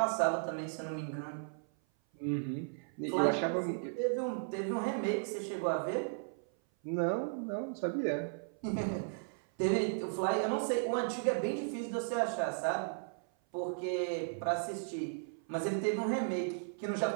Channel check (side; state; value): left; silent; 54 dB below the other